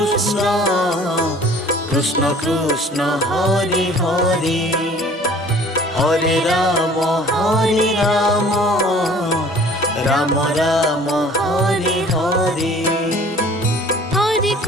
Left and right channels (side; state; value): both; normal; correlation 0.51